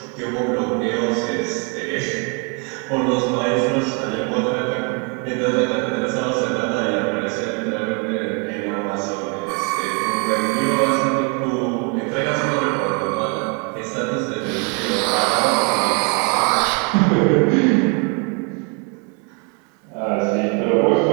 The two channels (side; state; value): left; quieter; 35.4 dB